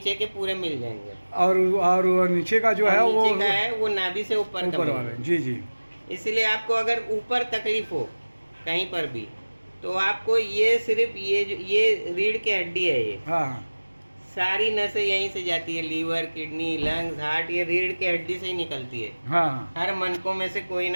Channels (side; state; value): both; inverted; correlation -1.00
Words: के पूरे मिल जाएंगे। और नीचे का जो और है वो नीचे का है वो नाभि से ऊपर का ऊपर मिलेगा। वाला। जी जी। इसलिए आपको अगर ऊपर तकलीफ हो कहीं पर भी, तो आपको ये सिर्फ ये रीढ़ की हड्डी है, ये हाँ हाँ। सारी नसें यहीं से जाती है, लीवर, किडनी, लंग्स, हार्ट, ये रीढ़ की हड्डी से ही निकलती है। हाँ हाँ। हर मनकों में से कोई